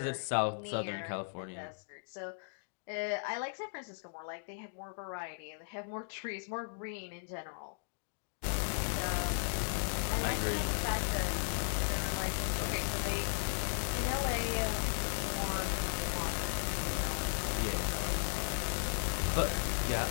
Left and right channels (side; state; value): right; silent; digital silence